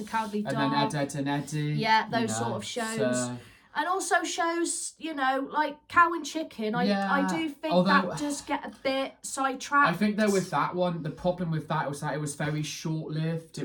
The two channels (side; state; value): both; identical; correlation 1.00